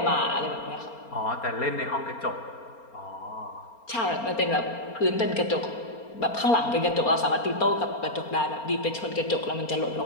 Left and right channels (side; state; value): right; late; 4.3 ms